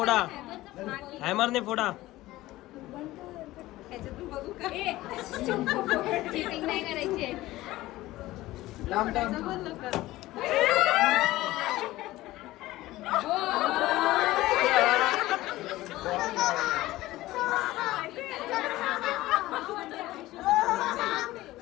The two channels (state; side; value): quieter; right; 17.2 dB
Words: हॅमरने फोडा चिटिंग नाही करायची